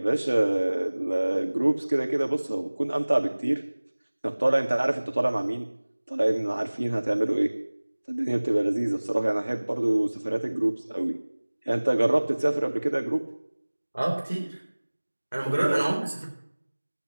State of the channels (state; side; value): inverted; both; correlation -1.00